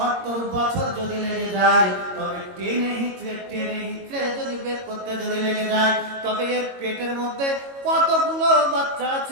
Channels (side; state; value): left; late; 22 ms